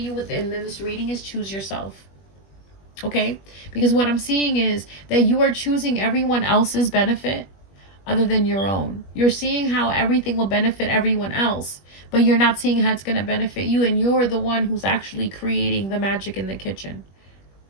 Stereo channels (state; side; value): late; right; 21 ms